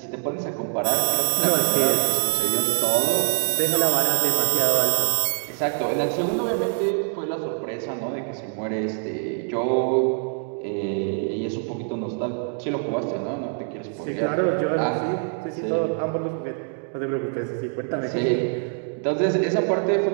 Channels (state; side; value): silent; left; 55 dB below the other